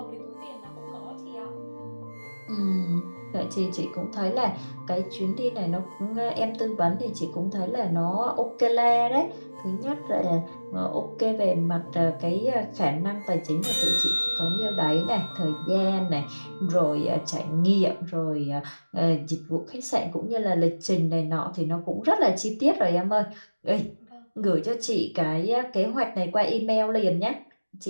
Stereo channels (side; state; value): both; inverted; correlation -1.00